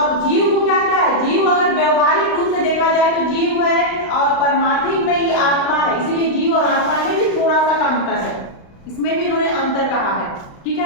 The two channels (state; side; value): late; right; 35 ms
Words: जीव को क्या क्या है, जीव अगर व्यवहारिक रूप से देखा जाए तो जीव है और परमार्थिक में ही आत्मा है, इसीलिए जीव और आत्मा में भी थोड़ा सा का अंतर है, इसमें भी इन्होंने अंतर कहा है। ठीक